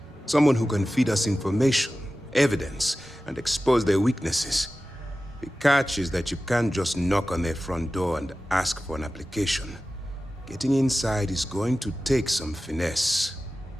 Someone who can feed us information, evidence, and expose their weaknesses. The catch is that you can't just knock on their front door and ask for an application. Getting inside is going to take some finesse.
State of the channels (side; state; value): both; normal; correlation 0.95